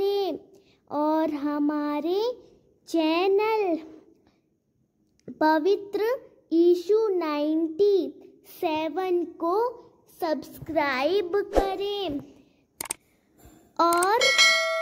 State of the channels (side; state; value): both; identical; correlation 1.00